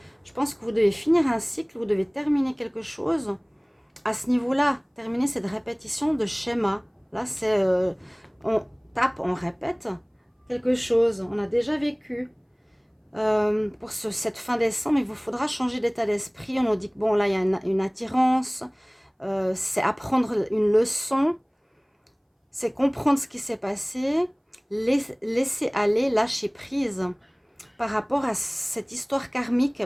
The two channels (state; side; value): identical; both; correlation 1.00